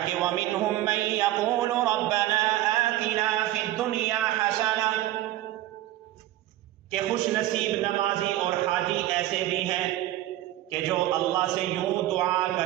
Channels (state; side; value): quieter; left; 14.8 dB